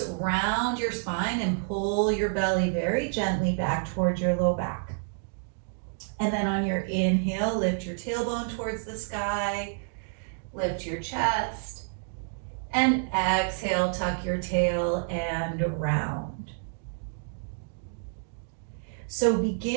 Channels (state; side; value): silent; left; digital silence